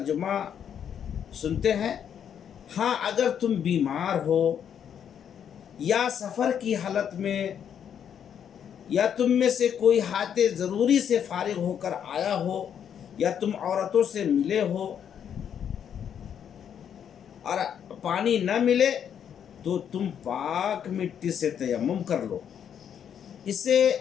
سنتے ہیں۔ ہاں، اگر تم بیمار ہو یا سفر کی حالت میں، یا تم میں سے کوئی حاجت ضروری سے فارغ ہو کر آیا ہو، یا تم عورتوں سے ملے ہو اور پانی نہ ملے، تو تم پاک مٹی سے تیمم کر لو، اسے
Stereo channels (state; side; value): quieter; right; 8.6 dB